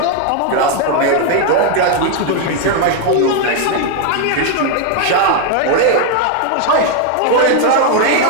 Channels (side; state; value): both; different; correlation 0.01